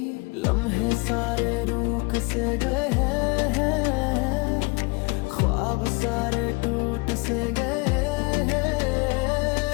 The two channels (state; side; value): quieter; right; 28.0 dB